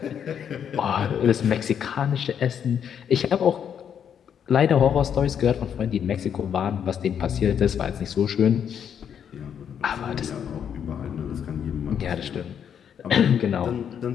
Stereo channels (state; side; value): quieter; right; 8.3 dB